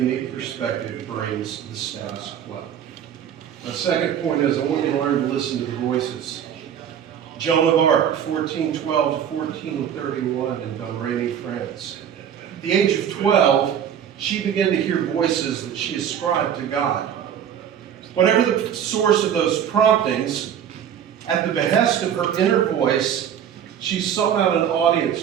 perspective brings to the status quo. My second point is I want you to learn to listen to the voices. Joan of Arc, 1412 to 1431 in Domremy, France. At the age of 12, she began to hear voices that she ascribed to God. Whatever the source of those promptings, at the behest of her inner voice, she sought out an audience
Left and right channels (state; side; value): quieter; left; 9.0 dB